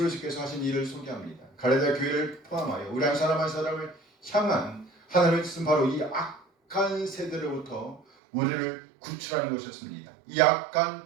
하신 일을 소개합니다. 갈라디아 교회를 포함하여 우리 한 사람 한 사람을 향한 하나님의 뜻은 바로 이 악한 세대로부터 우리를 구출하는 것이었습니다. 이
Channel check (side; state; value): left; drops out; at 8.0 s